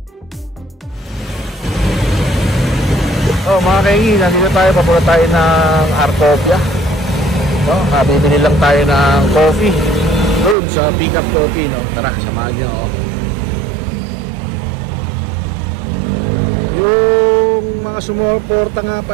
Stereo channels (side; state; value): left; drops out; at 10.6 s